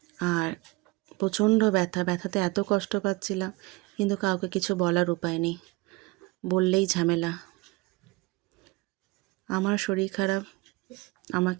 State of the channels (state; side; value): quieter; left; 23.2 dB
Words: আর প্রচণ্ড ব্যথাতে এত কষ্ট পাচ্ছিলাম, কিন্তু কাউকে কিছু বলার উপায় নেই, বললেই ঝামেলা। আমার শরীর খারাপ,